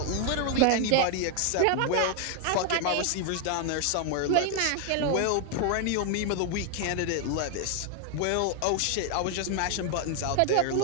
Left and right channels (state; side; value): different; both; correlation 0.00